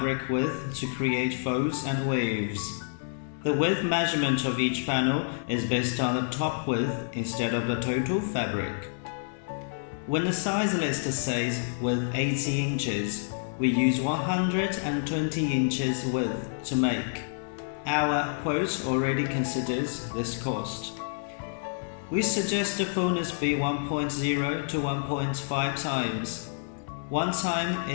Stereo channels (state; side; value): silent; right; 59 dB below the other